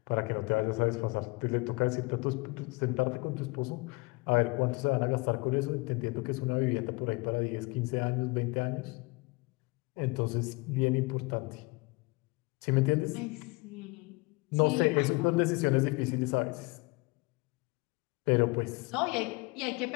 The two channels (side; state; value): right; quieter; 26.1 dB